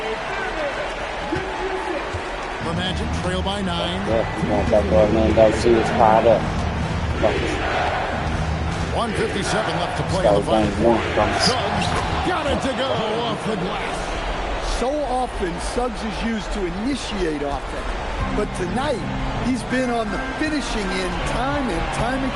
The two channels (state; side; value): identical; both; correlation 1.00